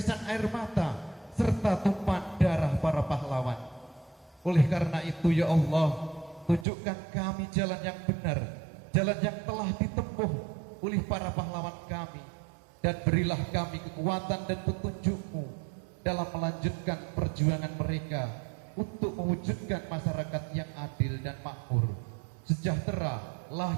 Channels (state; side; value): drops out; left; at 6.7 s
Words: air mata, serta tumpahan darah para pahlawan. Oleh karena itu ya Allah, tunjukkan kami jalan yang benar, jalan yang telah ditempuh oleh para pahlawan kami, dan berilah kami kekuatan dan petunjuk-Mu dalam melanjutkan perjuangan mereka untuk mewujudkan masyarakat yang adil dan makmur, sejahtera,